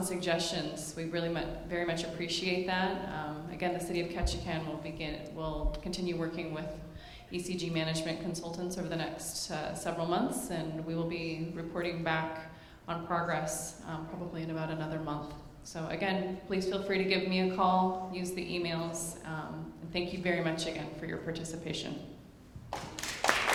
suggestions. We really very much appreciate that. Again, the City of Ketchikan will continue working with ECG management consultants over the next several months, and we will be reporting back on progress probably in about another month. So again, please feel free to give me a call, use the emails, and thank you very much again for your participation.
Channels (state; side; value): identical; both; correlation 1.00